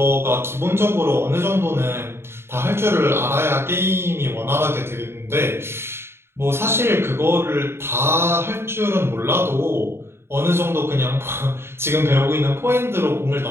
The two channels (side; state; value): left; late; 0.12 ms